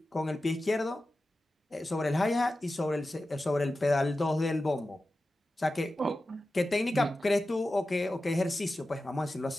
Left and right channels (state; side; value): normal; both; correlation 0.93